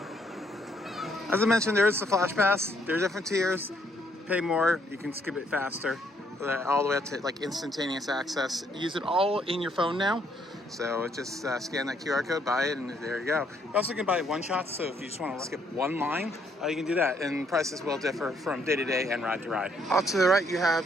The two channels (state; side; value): normal; both; correlation 0.70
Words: As I mentioned, there is the Flash Pass. There are different tiers. Pay more, you can skip it faster. All the way up to like instantaneous access. Use it all in your phone now. So just scan that QR code, buy it, and there you go. You also can buy one-shots, so if you just want to skip one line, you can do that. And prices will differ from day to day and ride to ride. Off to the right, you